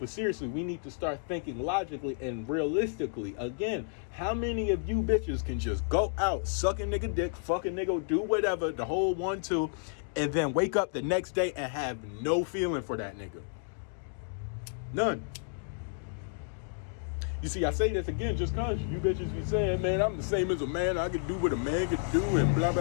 seriously, we need to start thinking logically and realistically. Again, how many of you bitches can just go out, suck a nigga dick, fuck a nigga, do whatever, the whole 1-2, and then wake up the next day and have no feeling for that nigga? None. You see, I say this again just cause you bitches be saying, man, I'm the same as a man, I can do what a man can do, and blah,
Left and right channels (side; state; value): right; silent; digital silence